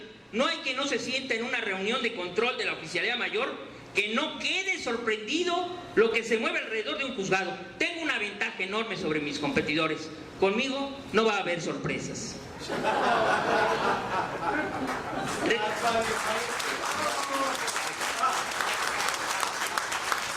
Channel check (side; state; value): both; identical; correlation 1.00